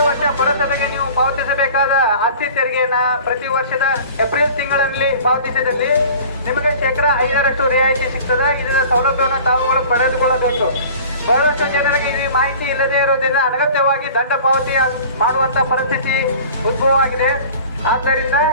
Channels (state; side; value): inverted; both; correlation -0.43